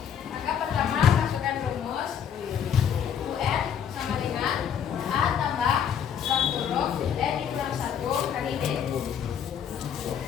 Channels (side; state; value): right; quieter; 8.3 dB